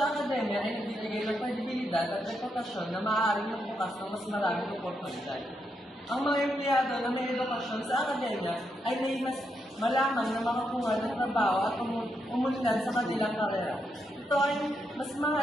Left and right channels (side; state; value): both; normal; correlation 0.81